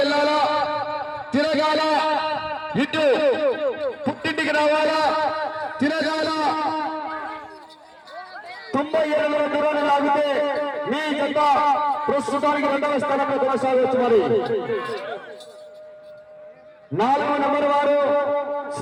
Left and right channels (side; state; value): both; identical; correlation 1.00